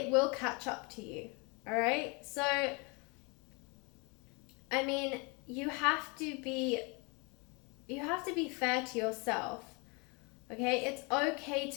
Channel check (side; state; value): right; quieter; 30.7 dB